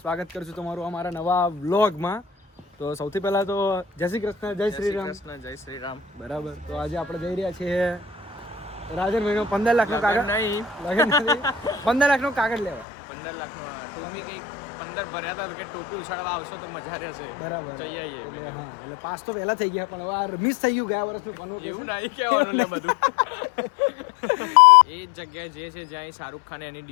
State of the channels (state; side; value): drops out; right; at 12.9 s